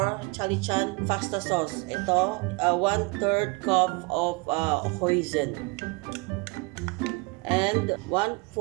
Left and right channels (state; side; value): quieter; left; 28.0 dB